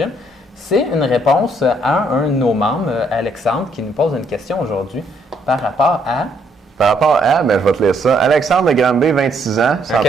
C'est une réponse à un de nos membres, Alexandre, qui nous pose une question aujourd'hui par rapport à... je vais te lire ça. Alexandre de Granby, 26 ans,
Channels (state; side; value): normal; both; correlation 0.70